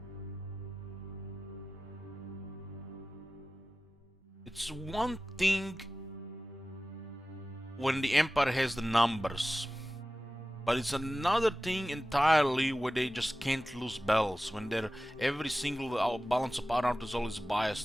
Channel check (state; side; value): normal; both; correlation 0.96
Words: It's one thing when the Empire has the numbers, but it's another thing entirely where they just can't lose battles, when every single balance of power is always